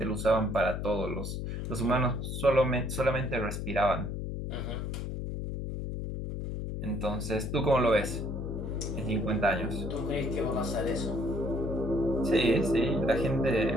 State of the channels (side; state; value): left; noise; hum, 3 dB below the sound